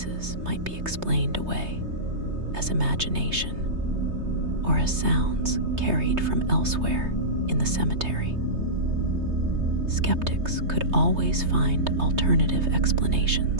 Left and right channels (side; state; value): left; late; 3.2 ms